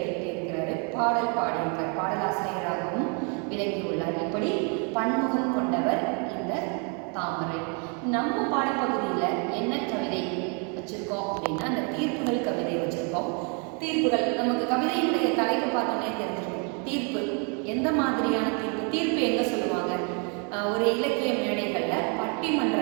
எழுதியிருக்கிறாரு. பாடல் பாடியிருக்கார், பாடலாசிரியராகவும் விளங்கியுள்ளார். இப்படி பன்முகம் கொண்டவர் இந்த தாமரை. நம்ம பாடப்பகுதியில் என்ன கவிதை வச்சுருக்கோம் அப்படின்னா, அந்த தீர்ப்புகள் கவிதை வச்சுருக்கோம். தீர்ப்புகள் நமக்கு கவிதையினுடைய தலைப்பு பார்த்தோன்னே தெரிஞ்சிருக்கும். தீர்ப்பு எந்த மாதிரியான தீர்ப்பு? தீர்ப்பு எங்கே சொல்லுவாங்க? ஒரு இலக்கிய மேடைகளில்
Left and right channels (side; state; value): left; quieter; 36.6 dB